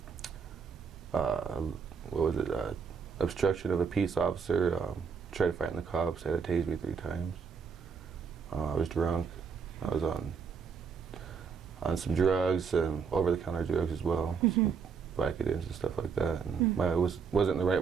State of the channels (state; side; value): quieter; left; 6.1 dB